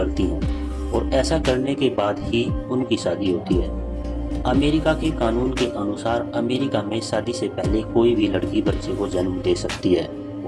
हैं, और ऐसा करने के बाद ही उनकी शादी होती है। अमेरिका के कानून के अनुसार अमेरिका में शादी से पहले कोई भी लड़की बच्चे को जन्म दे सकती है,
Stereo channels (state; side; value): identical; both; correlation 1.00